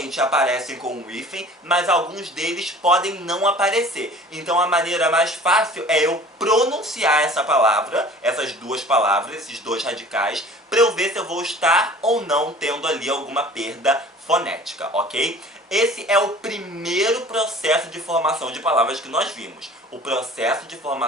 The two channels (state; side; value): normal; both; correlation 0.46